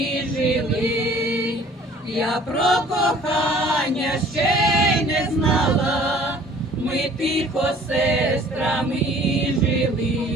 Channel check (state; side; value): normal; both; correlation 0.52